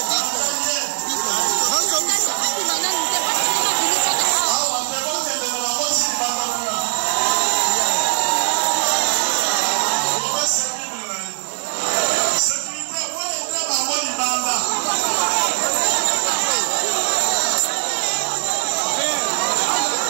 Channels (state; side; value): silent; left; 60 dB below the other